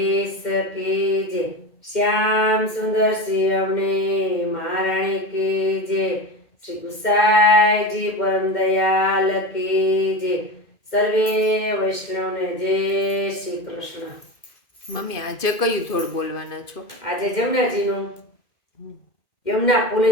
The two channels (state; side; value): late; right; 2.1 ms